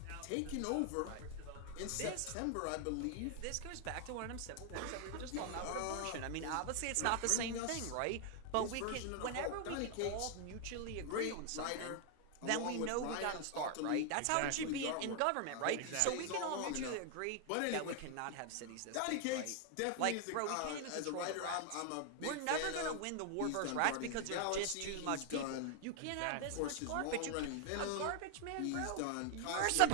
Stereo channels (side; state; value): both; different; correlation 0.00